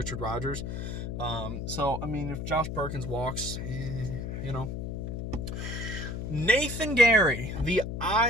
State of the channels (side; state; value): left; noise; hum, 5 dB below the sound